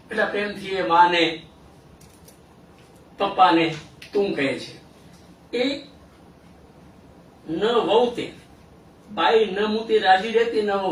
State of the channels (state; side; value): identical; both; correlation 1.00